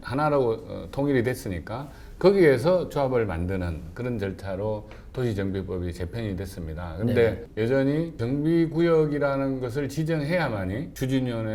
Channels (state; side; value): identical; both; correlation 1.00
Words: 하나라고 통일이 됐으니까 거기에서 조합을 만드는 그런 절차로 도시정비법이 제편이 됐습니다. 근데 여전히 정비구역이라는 것을 지정해야만이